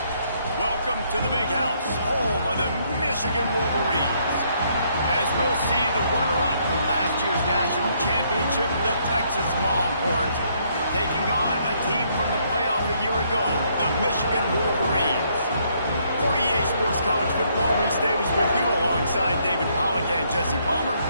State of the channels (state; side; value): inverted; both; correlation -0.70